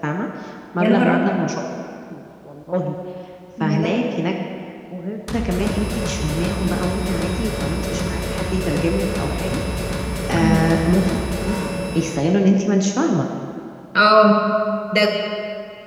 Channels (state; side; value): identical; both; correlation 1.00